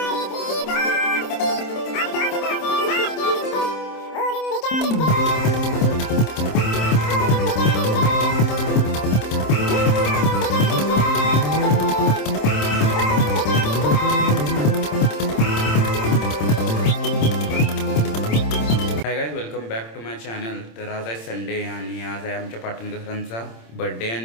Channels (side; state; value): right; late; 26 ms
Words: Hi guys, welcome back to my channel. तर आज आहे Sunday आणि आज आहे आमच्या पाटणकर सरांचा बर्थडे